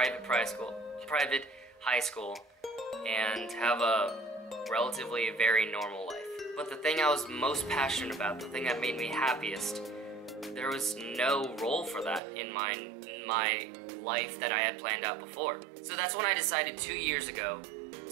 high school, and have a relatively very normal life. But the thing I was most passionate about, the thing that made me happiest, there was no role for that in my life that I had planned out before. So that's when I decided 2 years ago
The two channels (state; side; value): drops out; left; at 12.2 s